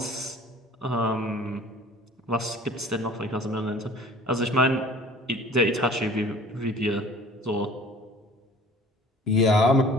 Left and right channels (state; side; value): normal; both; correlation 0.48